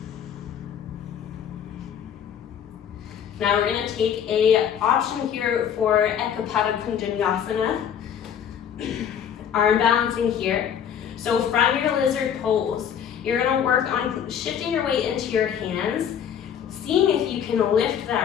Now we're gonna take a option here for Ekapada Kunjanyasana. Arm balancing here. So from your lizard pose, you're gonna work on shifting your weight into your hands, seeing if you can lift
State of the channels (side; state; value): right; quieter; 8.7 dB